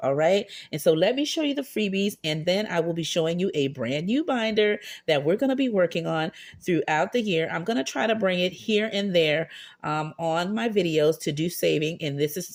All right. And so let me show you the freebies, and then I will be showing you a brand new binder that we're going to be working on throughout the year. I'm going to try to bring it here and there on my videos to do saving. And this is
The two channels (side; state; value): both; identical; correlation 1.00